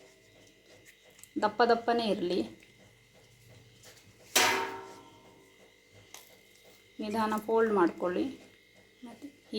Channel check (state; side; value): identical; both; correlation 1.00